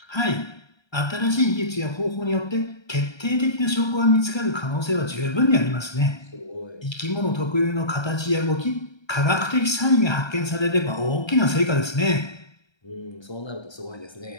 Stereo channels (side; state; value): right; late; 1.3 ms